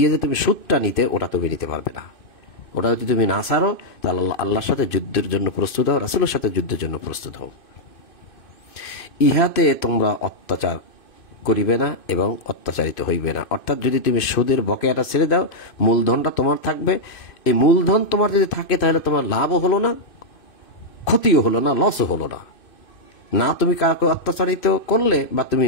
যে তুমি সুদটা নিতে, ওটা তুমি নিতে পারবে না। ওটা যদি তুমি না ছাড়ো, তাহলে আল্লাহর সাথে যুদ্ধের জন্য প্রস্তুত হও, রাসূলের সাথে যুদ্ধের জন্য প্রস্তুত হও। ইহাতে তোমরা অত্যাচার করিবে না এবং অত্যাচারিত হইবে না। অর্থাৎ যদি তুমি সুদের বকেয়াটা ছেড়ে দাও, মূলধনটা তোমার থাকবে। এই মূলধন তোমার যদি থাকে, তাহলে তোমার লাভও হলো না, ক্ষতিও হলো না, লসও হলো না। না তুমি কাউকে অত্যাচারিত করলে, বা তুমি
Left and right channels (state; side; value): late; right; 2.5 ms